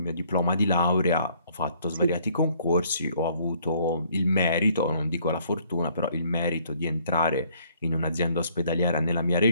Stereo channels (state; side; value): inverted; both; correlation -0.63